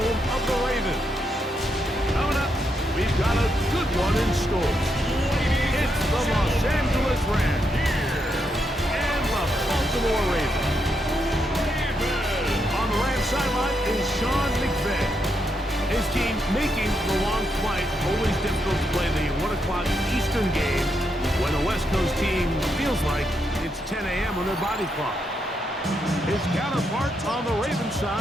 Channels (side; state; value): both; normal; correlation 0.80